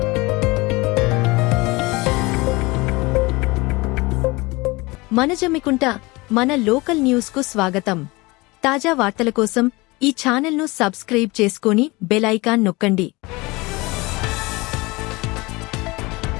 మనజమ్మికుంట మన లోకల్ న్యూస్కు స్వాగతం. తాజా వార్తల కోసం ఈ ఛానల్ను సబ్స్క్రైబ్ చేసుకొని బెల్ ఐకాన్ నొక్కండి.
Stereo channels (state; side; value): quieter; right; 23.5 dB